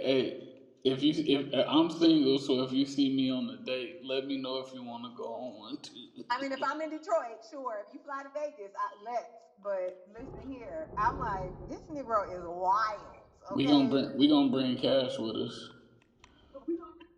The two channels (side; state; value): both; identical; correlation 1.00